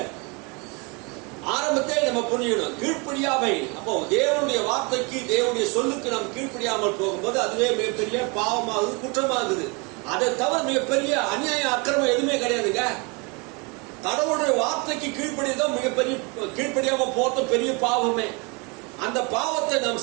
ஆரம்பத்தை நம்ம புரியணும். கீழ்ப்படியாமை. அப்போ தேவனுடைய வார்த்தைக்கு, தேவனுடைய சொல்லுக்கு நாம் கீழ்ப்படியாமல் போகும்போது அதுவே மிகப்பெரிய பாவமாகுது, குற்றமாகுது. அதை தவிர மிகப்பெரிய அநியாய அக்கிரமம் எதுவுமே கிடையாதுங்க. கடவுளுடைய வார்த்தைக்கு கீழ்ப்படிதான் மிகப்பெரிய, கீழ்ப்படியாம போறது பெரிய பாவமே. அந்த பாவத்தை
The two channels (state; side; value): quieter; left; 30.1 dB